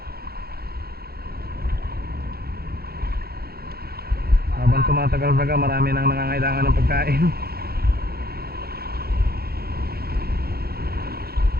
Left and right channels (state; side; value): late; left; 0.45 ms